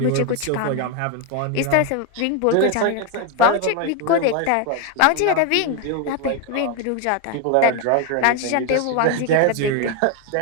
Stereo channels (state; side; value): different; both; correlation 0.01